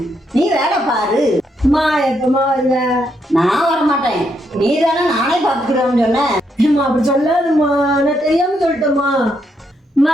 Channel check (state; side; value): normal; both; correlation 0.78